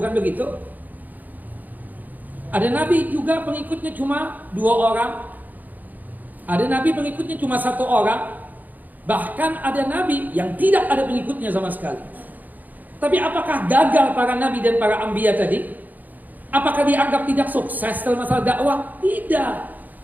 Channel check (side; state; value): left; late; 0.082 ms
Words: begitu? Ada Nabi juga pengikutnya cuma 2 orang. Ada Nabi pengikutnya cuma 1 orang. Bahkan ada Nabi yang tidak ada pengikutnya sama sekali. Tapi apakah gagal para Nabi dan para Anbiya tadi? Apakah dianggap tidak sukses dalam masalah dakwah? Tidak.